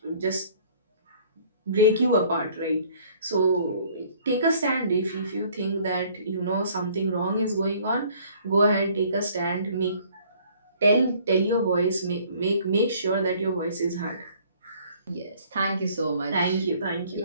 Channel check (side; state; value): both; inverted; correlation -0.57